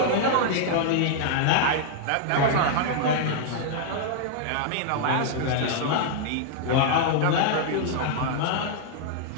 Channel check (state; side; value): different; both; correlation -0.01